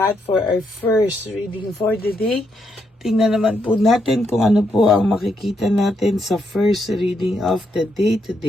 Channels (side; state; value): both; normal; correlation 0.78